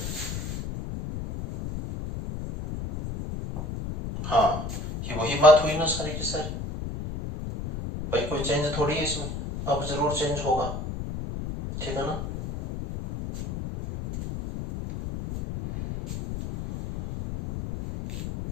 हाँ, ये वही बात हुई ना सारी की सारी। भाई कोई चेंज थोड़ी है इसमें, अब जरूर चेंज होगा, ठीक है ना।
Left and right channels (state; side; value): noise; left; rumble, 6 dB below the sound